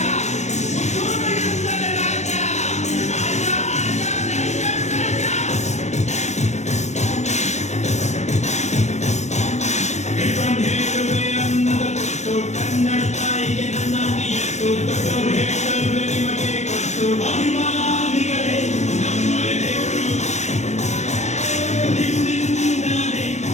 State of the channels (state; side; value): late; right; 0.33 ms